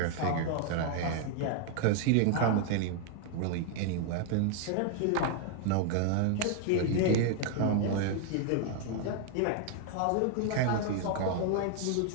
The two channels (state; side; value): different; both; correlation 0.00